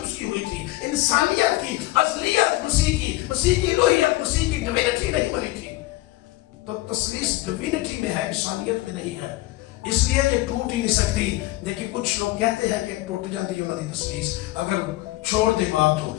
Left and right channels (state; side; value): quieter; right; 18.4 dB